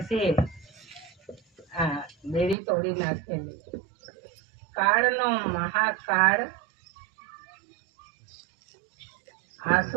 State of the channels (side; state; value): left; drops out; at 2.6 s